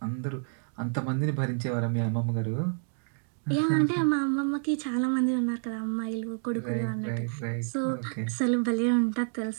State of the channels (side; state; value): left; silent; 59 dB below the other